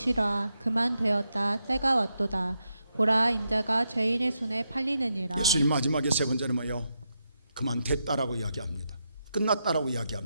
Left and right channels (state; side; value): inverted; both; correlation -0.84